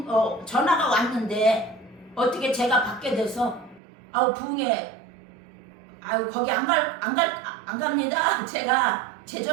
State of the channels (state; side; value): drops out; left; at 3.8 s